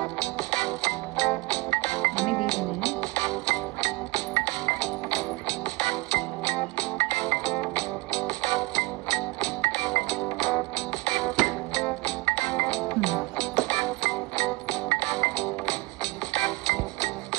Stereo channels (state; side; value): quieter; left; 22.3 dB